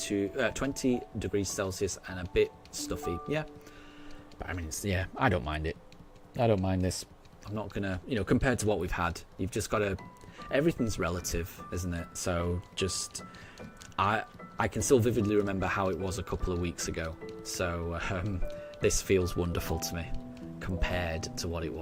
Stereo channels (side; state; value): both; identical; correlation 1.00